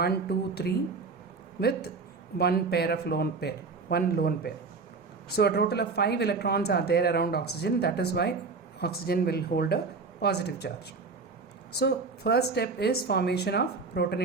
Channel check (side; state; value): left; quieter; 4.4 dB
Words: 2, 3, with one lone pair. So a total of 5 electrons are there around oxygen. That is why oxygen will hold a positive charge. So first step is formation of